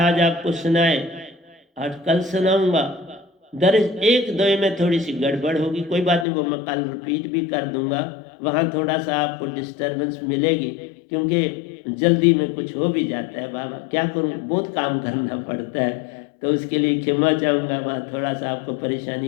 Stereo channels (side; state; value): right; drops out; at 6.2 s